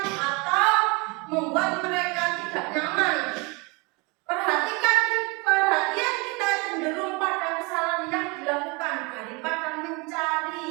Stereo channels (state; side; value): quieter; left; 28.3 dB